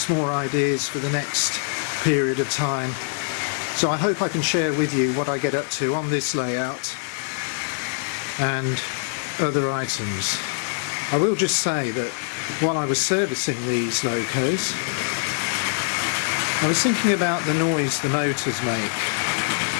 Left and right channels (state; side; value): silent; right; 63 dB below the other